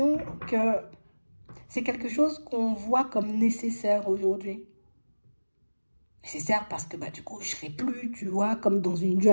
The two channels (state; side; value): inverted; both; correlation -1.00